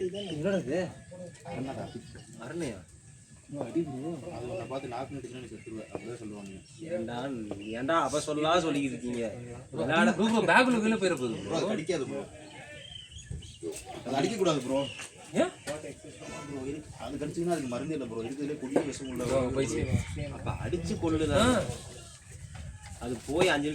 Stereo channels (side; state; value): both; identical; correlation 1.00